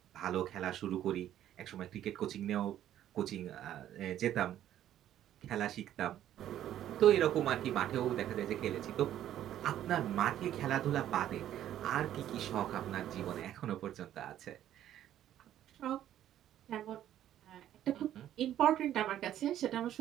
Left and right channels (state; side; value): quieter; left; 11.7 dB